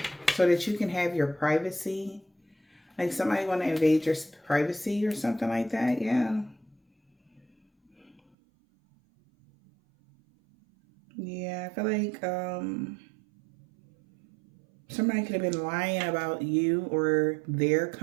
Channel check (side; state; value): left; drops out; at 8.2 s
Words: so that you can have your privacy. Like somebody want to invade your privacy or something like that, yeah. Yeah, I feel like somebody could have been lying about you or their